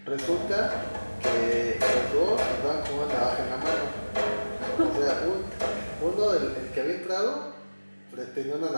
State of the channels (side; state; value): both; inverted; correlation -1.00